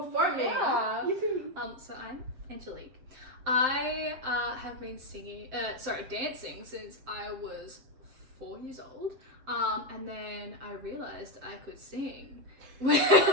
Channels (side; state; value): left; late; 7.7 ms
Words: Yeah. Yippee. So I'm Angelique. I have been dancing since I was 4 years old. And then I realized I could sing